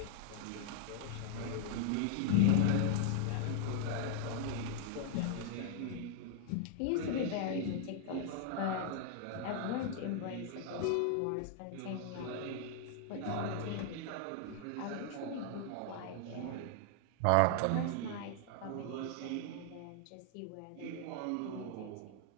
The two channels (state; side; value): different; both; correlation 0.00